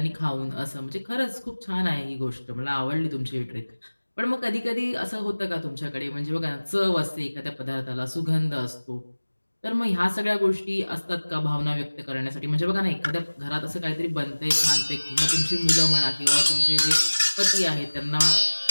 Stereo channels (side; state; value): both; inverted; correlation -1.00